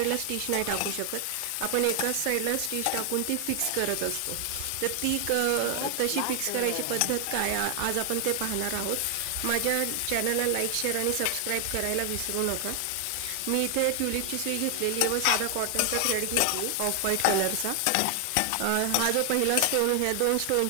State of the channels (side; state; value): both; different; correlation 0.00